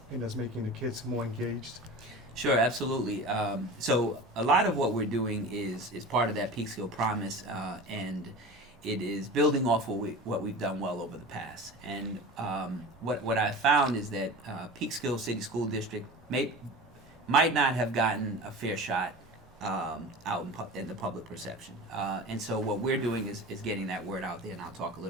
in that's making the kids more engaged? Sure, absolutely. So a lot of what we're doing is part of that Peekskill promise, and it is building off what we've done well over the past. And what I found is that Peekskill City School District might not have gotten a fair shot out in the public perception. And so what we're doing is getting that word out there, and I'll talk a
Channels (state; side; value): normal; both; correlation 0.34